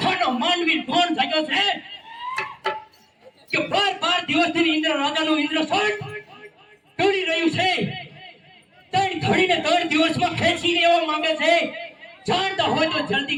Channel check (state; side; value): identical; both; correlation 1.00